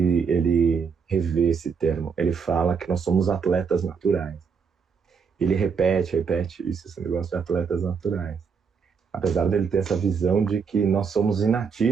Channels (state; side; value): quieter; left; 5.9 dB